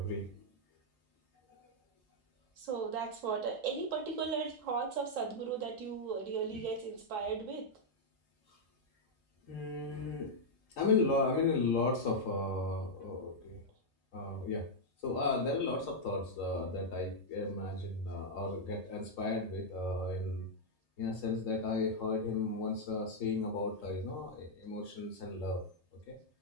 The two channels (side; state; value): both; normal; correlation -0.04